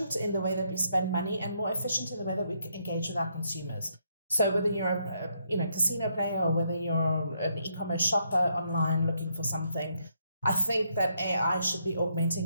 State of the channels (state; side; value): inverted; both; correlation -0.76